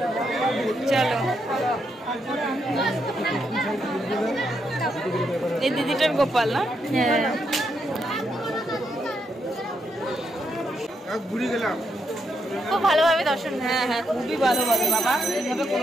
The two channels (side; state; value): both; normal; correlation 0.80